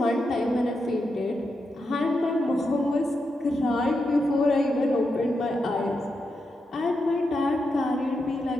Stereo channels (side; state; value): both; normal; correlation 0.86